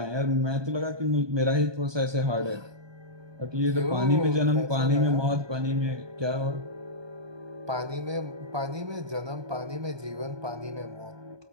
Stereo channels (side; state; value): left; late; 1.2 ms